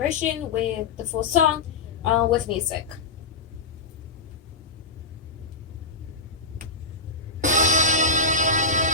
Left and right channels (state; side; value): quieter; right; 3.8 dB